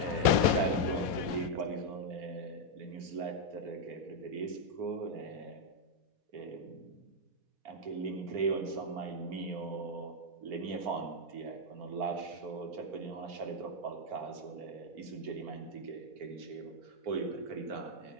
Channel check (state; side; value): late; left; 4.1 ms